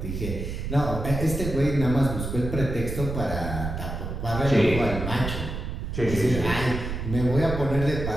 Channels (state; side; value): noise; right; rumble, 5 dB below the sound